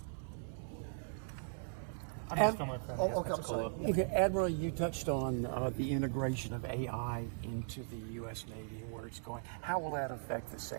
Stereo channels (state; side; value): silent; left; digital silence